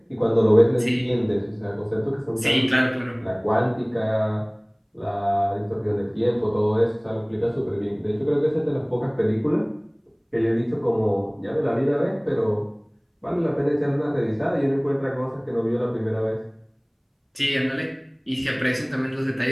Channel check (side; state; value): both; identical; correlation 1.00